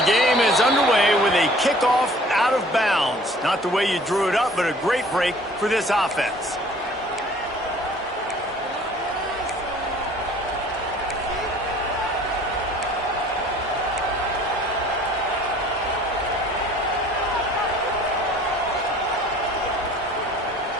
the game is underway with a kickoff out of bounds. Not the way you drew it up, but a great break for this offense.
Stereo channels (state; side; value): normal; both; correlation 0.51